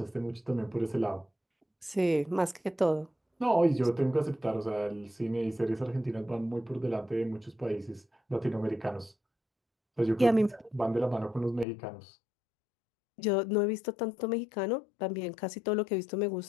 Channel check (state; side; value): drops out; right; at 11.7 s